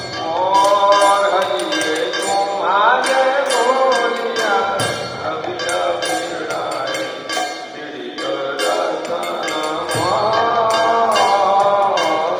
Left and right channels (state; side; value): identical; both; correlation 1.00